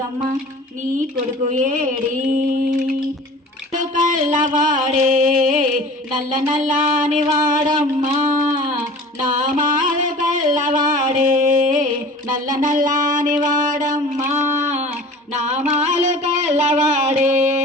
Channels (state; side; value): normal; both; correlation 0.42